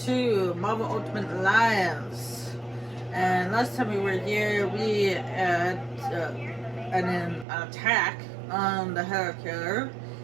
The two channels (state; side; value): drops out; left; at 7.5 s